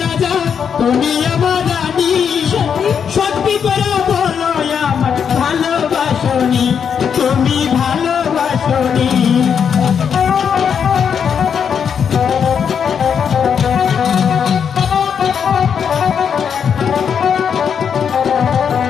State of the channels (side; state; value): right; quieter; 7.3 dB